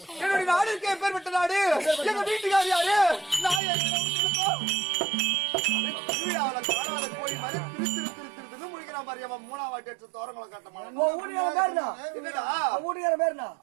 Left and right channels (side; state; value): left; drops out; at 3.6 s